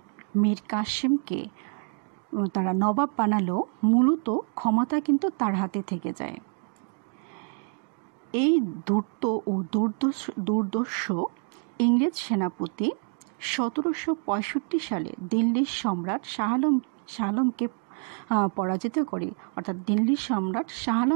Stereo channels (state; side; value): quieter; left; 39.3 dB